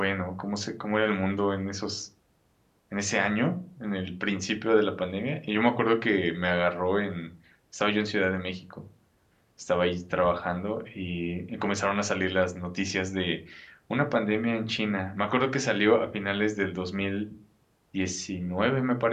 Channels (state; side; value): identical; both; correlation 1.00